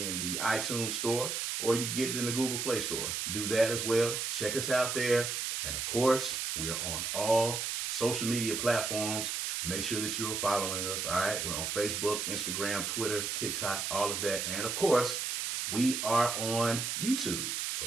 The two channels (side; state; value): right; noise; hiss, 1 dB below the sound